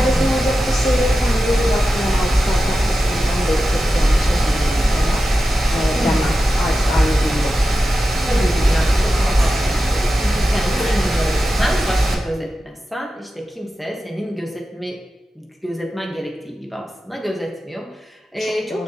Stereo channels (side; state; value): both; normal; correlation 0.92